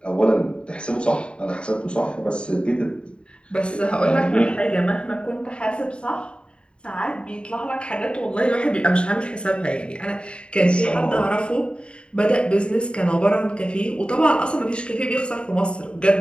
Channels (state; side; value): late; right; 0.054 ms